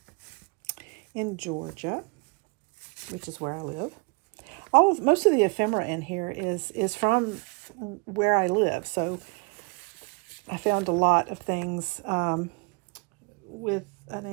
in Georgia, which is where I live. Most of the ephemera in here is from where I live, so I found a lot of things with an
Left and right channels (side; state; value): left; quieter; 32.2 dB